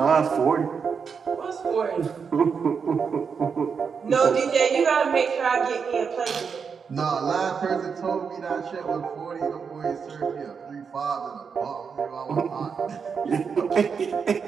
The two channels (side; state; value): left; quieter; 6.0 dB